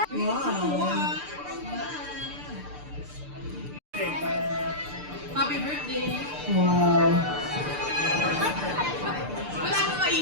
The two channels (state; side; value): late; left; 6.8 ms